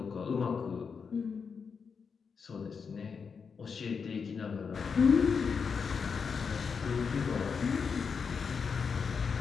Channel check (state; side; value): quieter; right; 5.8 dB